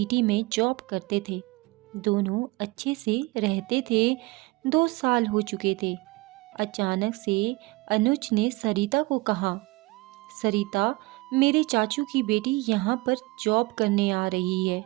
में जॉब करते थे। दोनों अच्छे से रहते थे। 2 साल हो चुके थे। अचानक से अनुज ने सरिता को कहा, सरिता, मेरे चाचू की बेटी यहाँ पर जॉब करने आ रही है।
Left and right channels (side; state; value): left; quieter; 22.8 dB